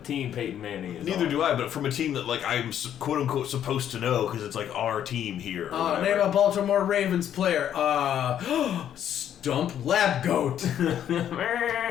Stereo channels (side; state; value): right; quieter; 10.1 dB